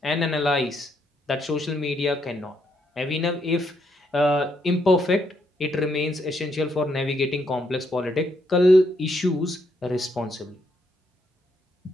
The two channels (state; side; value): normal; both; correlation 0.75